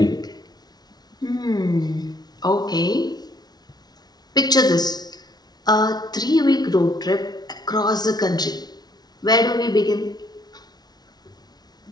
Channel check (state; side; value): late; right; 0.19 ms